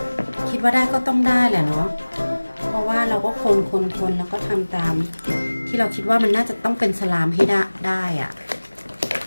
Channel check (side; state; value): both; inverted; correlation -1.00